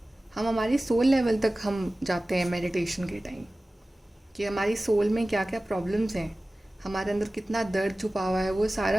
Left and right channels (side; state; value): both; normal; correlation 0.97